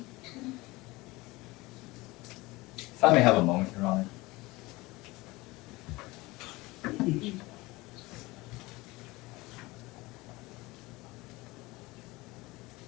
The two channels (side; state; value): right; quieter; 21.7 dB